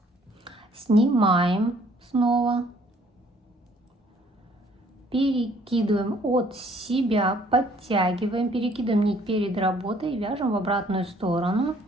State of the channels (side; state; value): both; normal; correlation 0.61